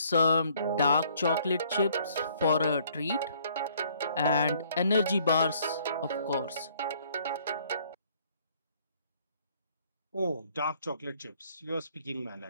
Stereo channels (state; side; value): inverted; both; correlation -0.62